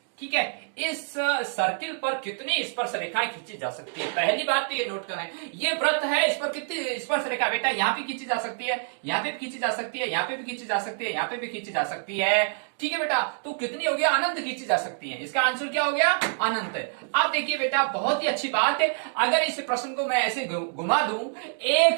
ठीक है, इस सर्किल पर कितनी स्पर्श रेखाएं खींची जा सकती है। पहली बात तो ये नोट करें, ये वृत्त है, इस पर कितनी स्पर्श रेखा बेटा, यहाँ पे खींची जा सकती है, यहाँ पे भी खींची जा सकती है, यहाँ पे भी खींची जा सकती है, यहाँ पे भी खींची जा सकती है, ठीक है बेटा। तो कितनी हो गया, अनंत खींची जा सकती है, इसका आंसर क्या हो गया, अनंत। अब देखिए बेटा, बहुत ही अच्छी बात है, अगर इस प्रश्न को मैं ऐसे घुमा दूं,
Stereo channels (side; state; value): left; silent; digital silence